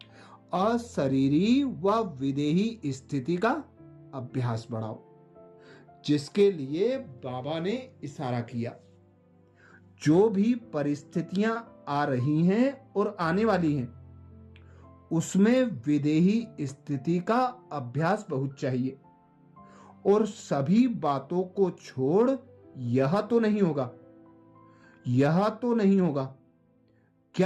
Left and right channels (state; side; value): identical; both; correlation 1.00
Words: अशरीरी व विदेही स्थिति का अभ्यास बढ़ाओ, जिसके लिए बाबा ने इशारा किया। जो भी परिस्थितियां आ रही हैं और आने वाली हैं, उसमें विदेही स्थिति का अभ्यास बहुत चाहिए। और सभी बातों को छोड़ यह तो नहीं होगा, यह तो नहीं होगा,